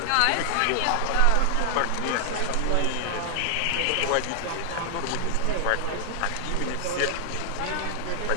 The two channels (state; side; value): different; both; correlation 0.00